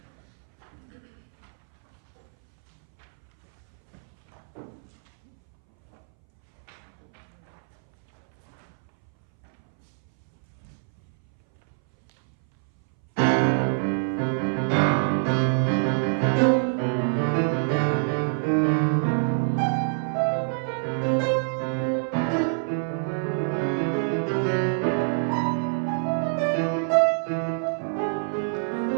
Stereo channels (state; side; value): silent; left; 61 dB below the other